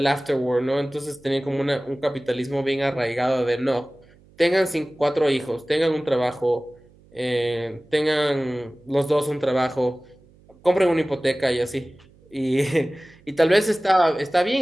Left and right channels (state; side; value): noise; right; hum, 28 dB below the sound